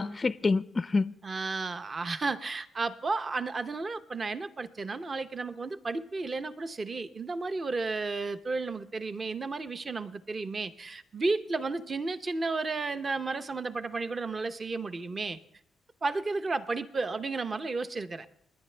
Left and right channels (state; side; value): normal; both; correlation 0.91